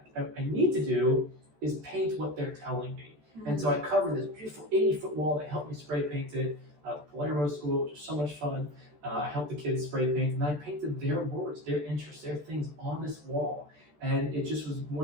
I need to do is paint what they're telling me. And so I covered this beautiful 80-foot wall. They helped me spray paint it. The Palermo School, which was so much fun. I helped the kids spray paint, and I painted their words, their interests, their things on this wall. And it just was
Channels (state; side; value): late; left; 14 ms